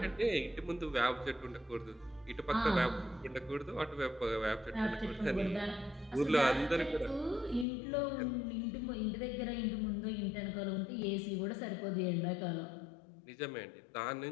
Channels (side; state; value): right; drops out; at 7.7 s